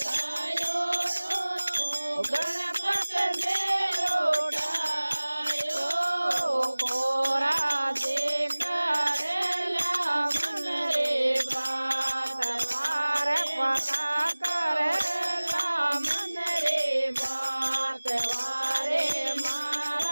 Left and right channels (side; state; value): both; inverted; correlation -1.00